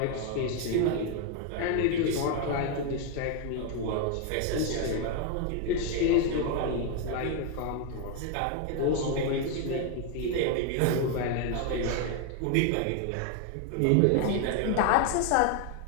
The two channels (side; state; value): both; different; correlation 0.01